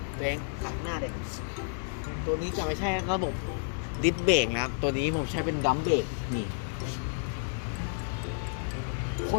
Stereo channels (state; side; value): silent; right; 57 dB below the other